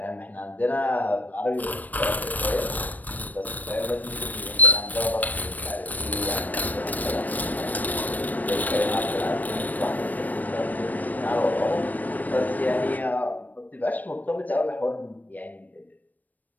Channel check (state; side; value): late; right; 0.082 ms